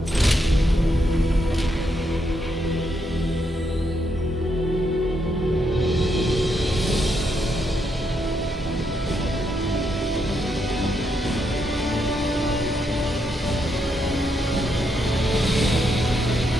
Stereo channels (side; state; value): both; normal; correlation 0.79